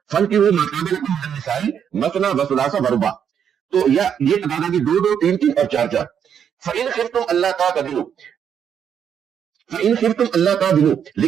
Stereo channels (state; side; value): quieter; left; 8.2 dB